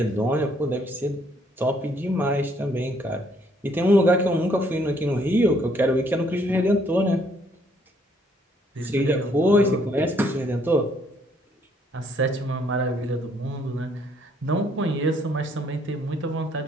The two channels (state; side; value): normal; both; correlation 0.67